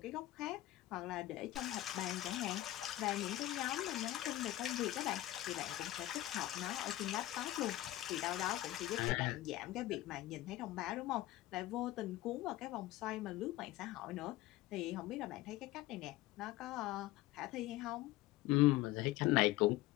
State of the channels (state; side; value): quieter; right; 15.9 dB